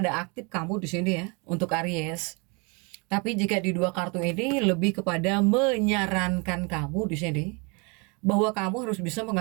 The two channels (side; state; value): left; quieter; 31.2 dB